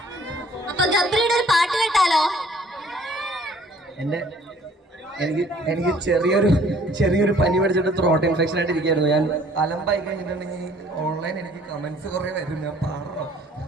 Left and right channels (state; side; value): normal; both; correlation 0.57